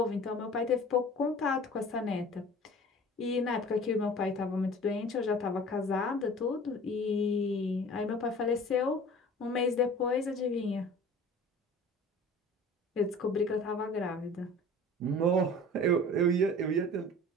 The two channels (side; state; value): both; normal; correlation 0.43